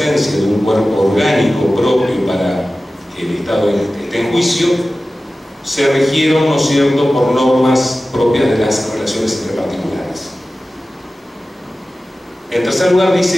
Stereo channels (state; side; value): normal; both; correlation 0.95